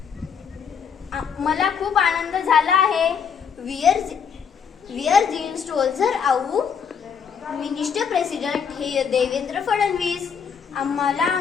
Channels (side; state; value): right; quieter; 6.8 dB